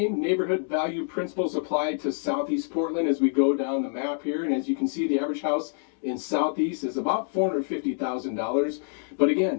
neighborhood value principles apply to Southeast Portland as we go down the map here. And as you can see, the average house in Southeast is about $450,000. But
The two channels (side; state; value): right; silent; digital silence